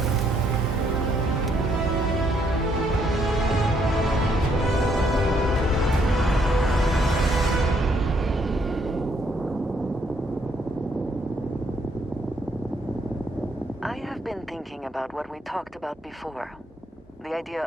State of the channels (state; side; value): normal; both; correlation 0.71